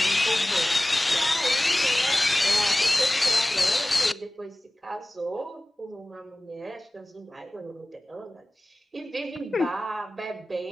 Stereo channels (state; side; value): normal; both; correlation 0.98